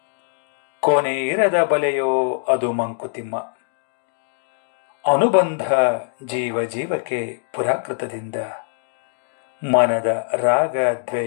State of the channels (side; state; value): right; silent; digital silence